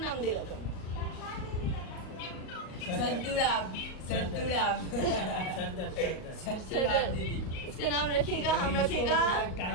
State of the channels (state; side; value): late; right; 38 ms